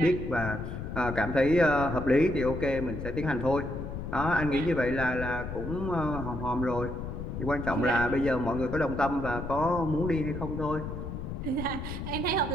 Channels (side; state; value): left; noise; rumble, 6 dB below the sound